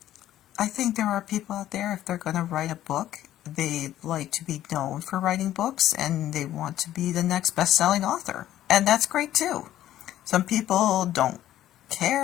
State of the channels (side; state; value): right; quieter; 12.8 dB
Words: I think there are people out there, if they're going to write a book, they like to be known for writing books and they want to be the next best-selling author. And that's great too. Some people don't